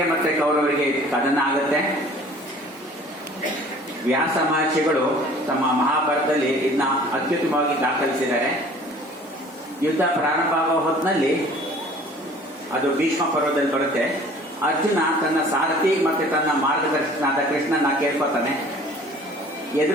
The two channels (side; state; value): both; normal; correlation 0.50